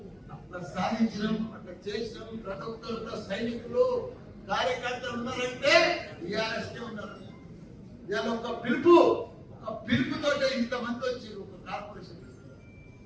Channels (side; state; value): both; identical; correlation 1.00